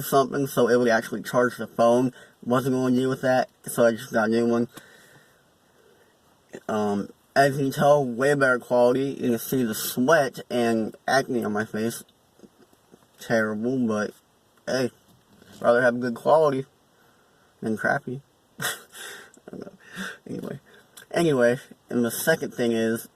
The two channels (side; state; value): both; identical; correlation 1.00